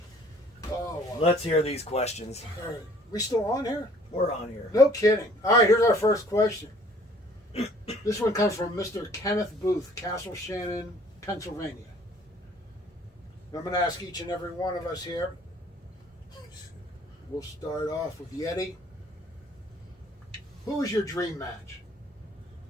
Oh, wow. Let's hear these questions. All right. We still on here? We're on here. No kidding. All right, here's our first question. This one comes from Mr. Kenneth Booth, Castle Shannon, Pennsylvania. I'm going to ask each and every one of us here. We'll start off with Yeti. Who was your dream match?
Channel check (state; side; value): normal; both; correlation 0.56